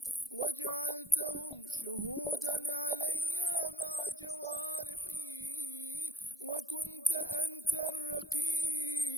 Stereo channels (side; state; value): both; normal; correlation 0.57